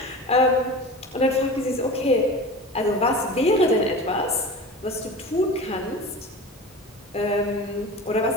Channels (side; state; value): both; normal; correlation 0.33